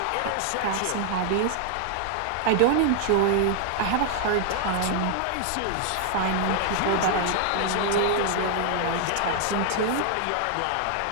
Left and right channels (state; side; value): different; both; correlation 0.00